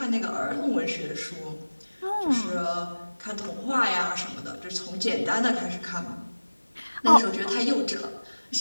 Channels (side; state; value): both; inverted; correlation -1.00